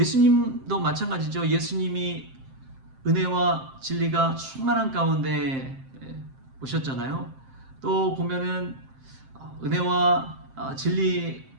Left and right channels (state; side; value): late; left; 7.6 ms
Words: 마찬가지죠. 예수님이 은혜와 진리가 충만한 가운데 오셨잖아요. 또 보면은 은혜와